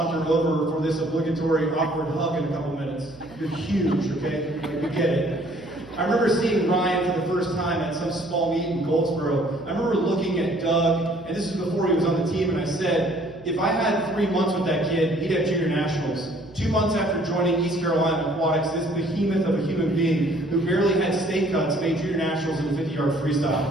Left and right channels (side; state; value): right; noise; hum, 23 dB below the sound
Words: over for this obligatory awkward hug in a couple minutes. You're huge, okay? You get it. I remember seeing Ryan for the first time at some small meet in Goldsboro. I remember looking at Doug, and this is before he was on the team, and I said, if I had 3 months with that kid, he'd have junior nationals. 2 months after joining East Carolina Aquatics, this behemoth of a human being who barely had state cuts made junior nationals in the 50-yard freestyle.